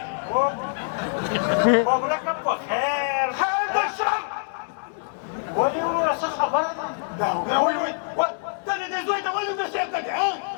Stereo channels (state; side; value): silent; right; digital silence